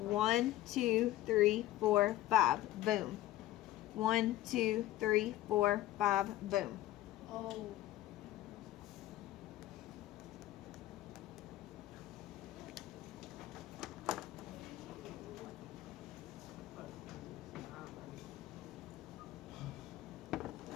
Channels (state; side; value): quieter; right; 14.9 dB